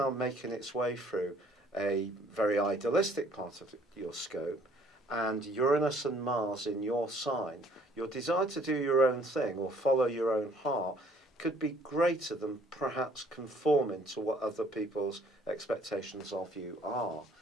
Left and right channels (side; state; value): both; normal; correlation 0.59